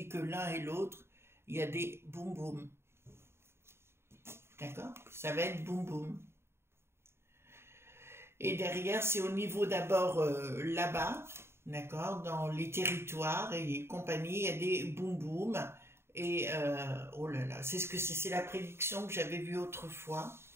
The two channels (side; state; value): left; late; 0.12 ms